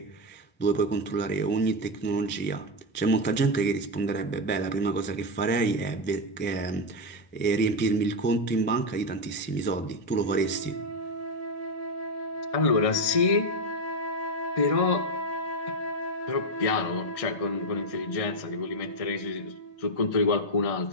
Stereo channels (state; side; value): late; right; 1.6 ms